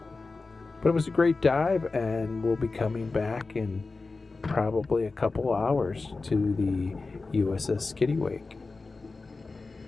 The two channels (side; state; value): right; quieter; 3.8 dB